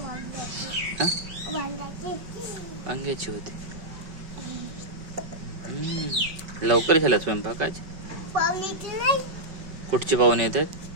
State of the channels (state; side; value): late; left; 5.3 ms